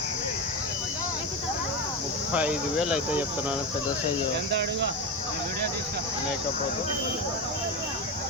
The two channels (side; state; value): both; normal; correlation 0.18